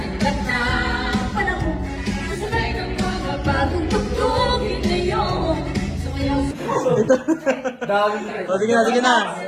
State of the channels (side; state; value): both; identical; correlation 1.00